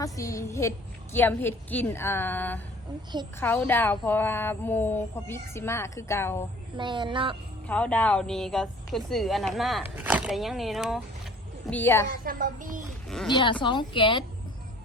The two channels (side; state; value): both; normal; correlation 0.51